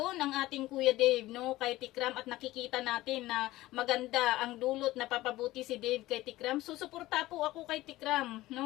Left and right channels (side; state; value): right; quieter; 17.2 dB